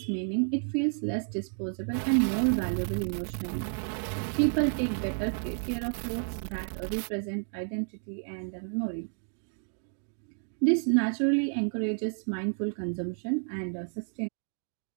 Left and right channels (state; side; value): silent; left; 57 dB below the other